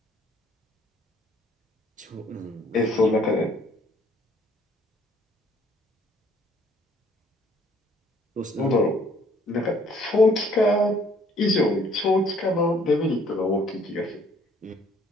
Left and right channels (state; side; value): normal; both; correlation 0.61